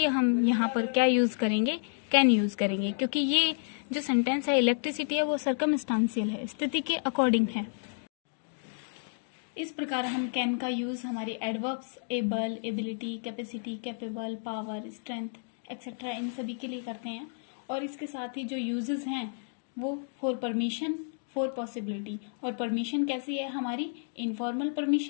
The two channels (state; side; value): silent; right; digital silence